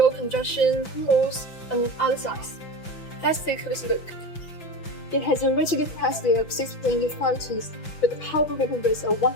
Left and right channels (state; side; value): late; right; 5.9 ms